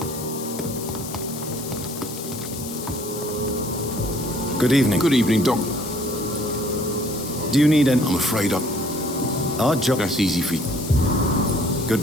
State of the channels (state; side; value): noise; left; hiss, 11 dB below the sound